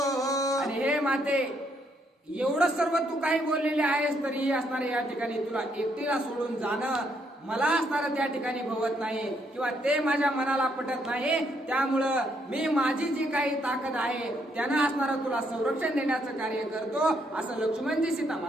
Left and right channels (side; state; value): both; normal; correlation 0.73